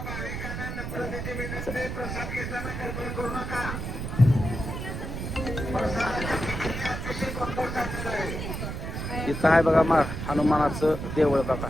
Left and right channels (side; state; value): right; noise; rumble, 5 dB below the sound